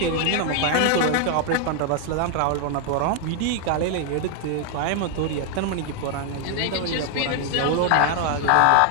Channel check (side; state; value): both; different; correlation 0.00